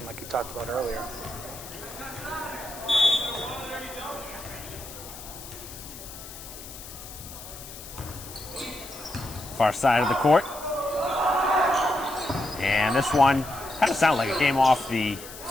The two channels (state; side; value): noise; left; hiss, 14 dB below the sound